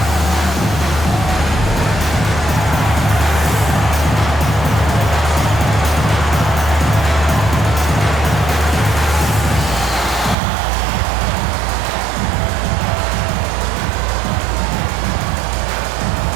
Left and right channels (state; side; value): drops out; left; at 10.4 s